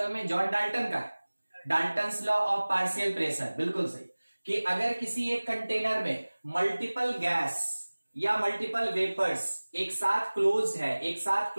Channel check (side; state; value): both; inverted; correlation -1.00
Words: में जॉन डाल्टन का, Dalton's law of partial pressure. बिल्कुल सही कि अगर किसी एक कंटेनर में मल्टीपल गैस या मल्टीपल वेपर्स एक साथ